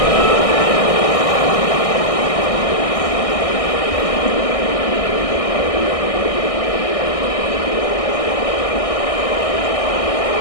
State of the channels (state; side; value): late; right; 1.6 ms